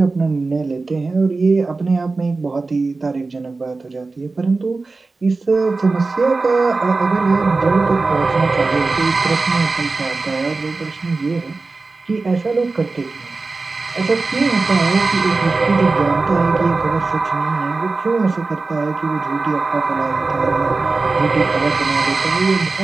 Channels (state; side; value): quieter; left; 3.8 dB